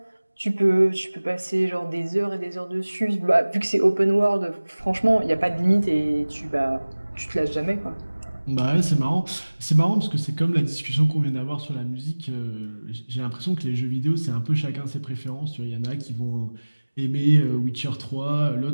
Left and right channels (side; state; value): both; inverted; correlation -1.00